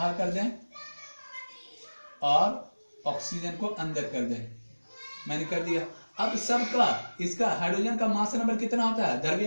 कर दें और ऑक्सीजन को अंदर कर दें, मैंने कर दिया। अब सबका इसका हाइड्रोजन का मास नंबर कितना होता है,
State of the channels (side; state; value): both; inverted; correlation -1.00